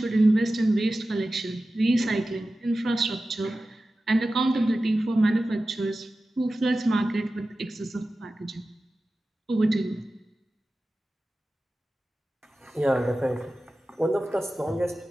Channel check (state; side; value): normal; both; correlation 0.95